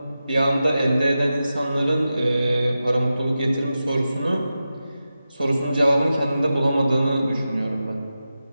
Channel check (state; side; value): inverted; both; correlation -0.92